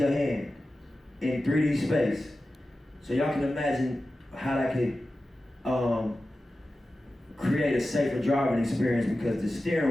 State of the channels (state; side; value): normal; both; correlation 0.94